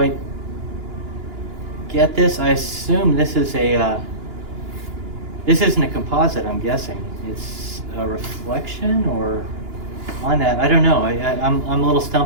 get this. I assume this is this isn't a composite, I'm guessing. It's a reflection or on that. I don't know. I'm a little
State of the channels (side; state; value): left; late; 2.9 ms